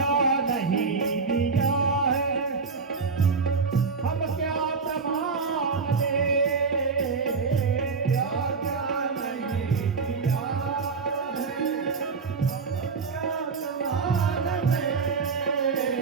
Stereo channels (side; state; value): left; quieter; 4.8 dB